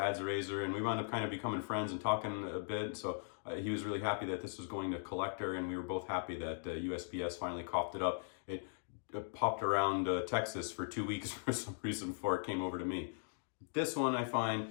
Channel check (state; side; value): silent; right; digital silence